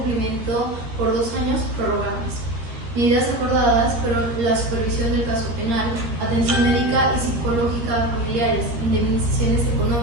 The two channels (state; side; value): late; left; 13 ms